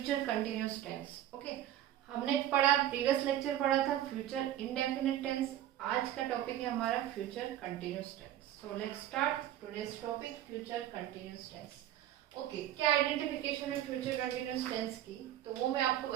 continuous tense. Okay, हमने पढ़ा, प्रीवियस लेक्चर पढ़ा था फ्यूचर इंडेफिनिट टेंस। आज का टॉपिक है हमारा future continuous tense. So let's start today's topic future continuous tense. Okay, क्या आइडेंटिफिकेशन है फ्यूचर कंटिन्यूस टेंस की, तो वो मैं आपको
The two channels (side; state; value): left; quieter; 12.3 dB